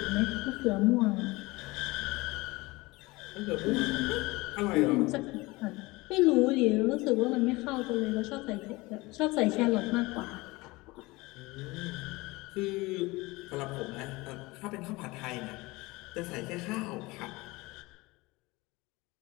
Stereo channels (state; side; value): quieter; right; 22.3 dB